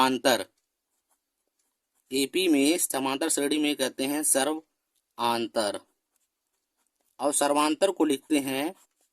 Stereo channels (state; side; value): identical; both; correlation 1.00